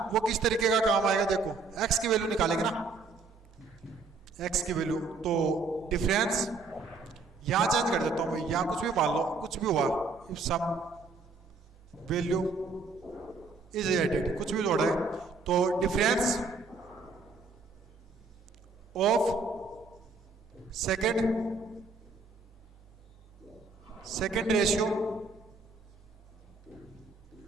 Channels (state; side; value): quieter; left; 4.0 dB